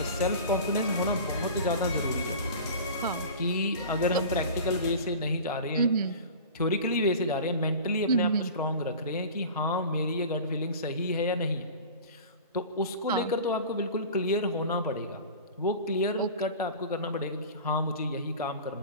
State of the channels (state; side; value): inverted; both; correlation -0.37